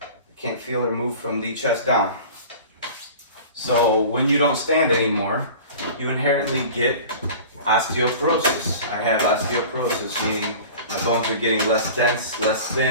can't feel or move from the chest down. So when you don't stand anymore, you inherently get osteoporosis. I have osteoporosis, meaning my bones are getting less dense, less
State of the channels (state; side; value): inverted; both; correlation -0.39